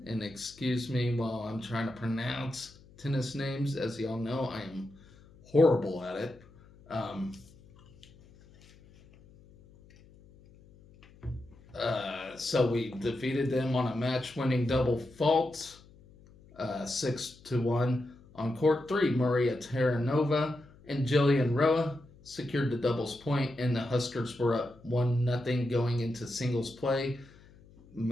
And excuse me while I'm trying to pronounce tennis names. As y'all know, I am horrible at it. So we defeated them on a match-winning double fault, 6-1. On court 3, Maria Terranova and Jillian Roa secured the doubles point, and the Huskers were up 1-0 going into singles play.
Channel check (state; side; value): noise; left; hum, 25 dB below the sound